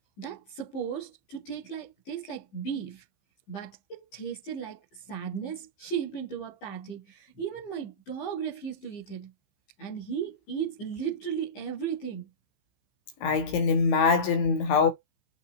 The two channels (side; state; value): right; late; 15 ms